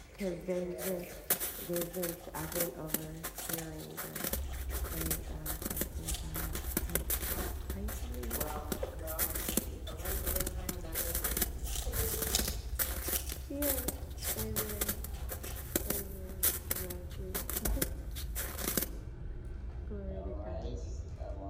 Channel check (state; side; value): identical; both; correlation 1.00